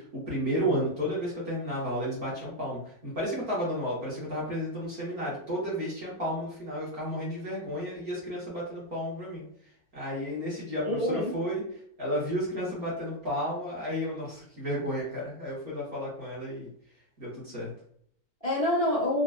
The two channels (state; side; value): late; left; 4.4 ms